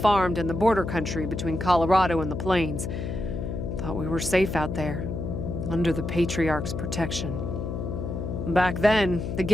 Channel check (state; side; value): noise; left; hum, 4 dB below the sound